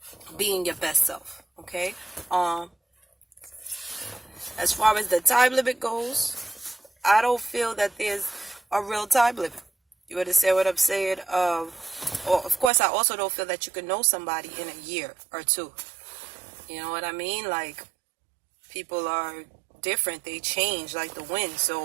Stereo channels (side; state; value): left; drops out; at 12.7 s